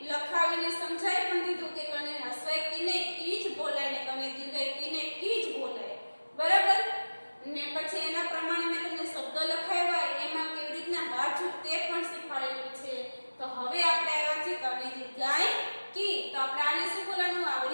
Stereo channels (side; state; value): both; inverted; correlation -1.00